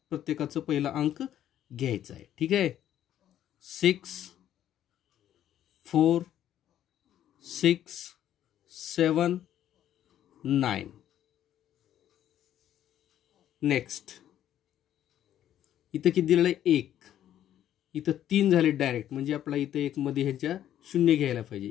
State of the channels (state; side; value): quieter; right; 11.3 dB